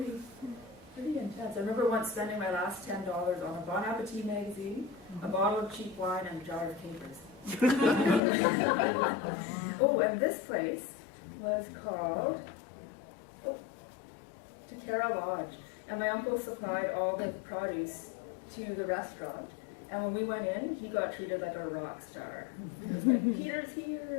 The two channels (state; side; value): drops out; right; at 8.2 s